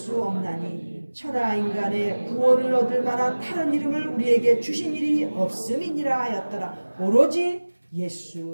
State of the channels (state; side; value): inverted; both; correlation -1.00